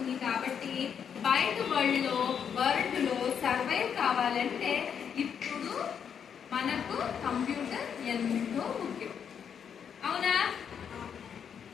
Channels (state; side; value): quieter; right; 7.7 dB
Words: కాబట్టి బయట వరల్డ్ లో సర్వైవ్ కావాలంటే ఇప్పుడు మనకు కంప్యూటర్ ఎంతో ముఖ్యం. అవునా?